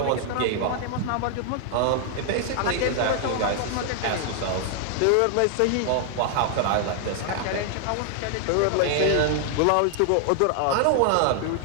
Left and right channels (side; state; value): both; different; correlation 0.00